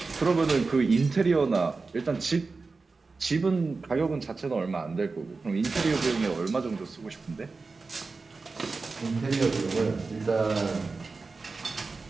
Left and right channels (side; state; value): left; quieter; 4.1 dB